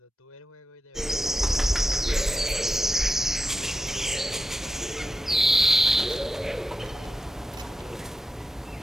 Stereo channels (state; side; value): normal; both; correlation 0.88